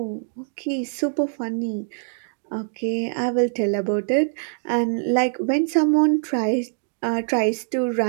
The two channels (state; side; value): silent; left; digital silence